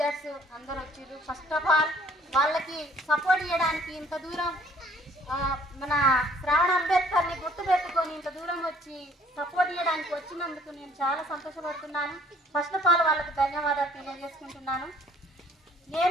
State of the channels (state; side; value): normal; both; correlation 0.59